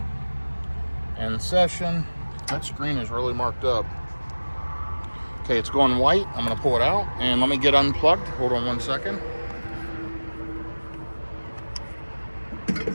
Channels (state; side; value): inverted; both; correlation -1.00